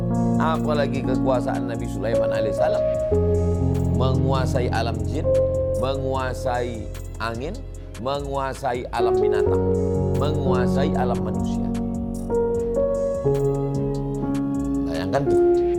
apalagi kekuasaan Nabi Sulaiman alaihissalam, menguasai alam jin, menguasai angin, menguasai alam binatang, menguasai alam manusia. Bayangkan tuh.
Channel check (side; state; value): both; identical; correlation 1.00